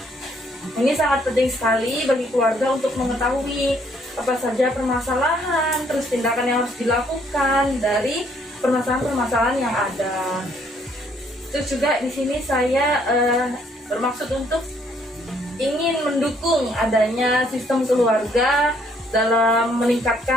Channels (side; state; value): both; normal; correlation 0.67